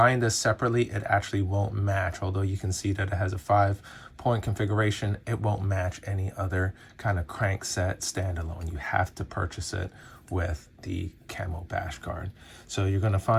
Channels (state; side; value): identical; both; correlation 1.00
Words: this separately, it actually won't match. Although you can see that it has a 5-point configuration, it won't match any other kind of crank set standalone. You have to purchase it with the camo bash guard. So you're going to